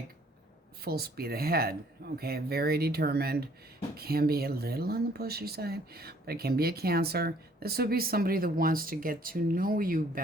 full speed ahead, okay? Very determined. Can be a little on the pushy side, but it can be a Cancer. This would be somebody that wants to get to know you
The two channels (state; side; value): normal; both; correlation 0.60